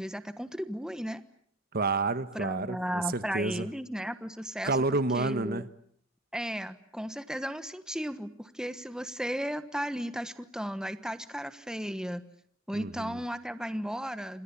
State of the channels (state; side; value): normal; both; correlation 0.51